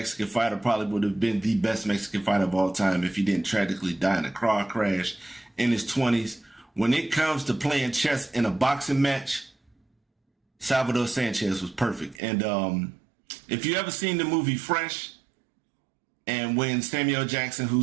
fighter, probably would have been the best Mexican fighter of all time if he didn't tragically die in a car crash in his 20s. When it comes to playing chess in a boxing match, Salvador Sanchez was perfect. And if you ever seen the movie Fresh, and when Samuel Jackson,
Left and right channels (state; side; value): drops out; left; at 12.2 s